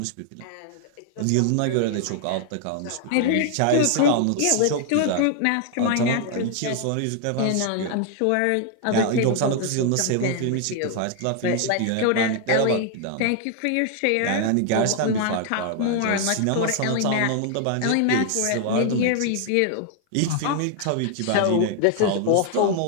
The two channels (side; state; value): both; different; correlation 0.00